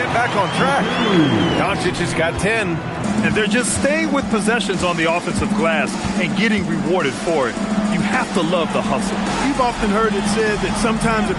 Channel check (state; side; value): identical; both; correlation 1.00